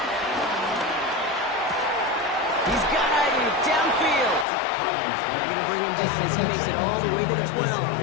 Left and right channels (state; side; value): drops out; right; at 4.5 s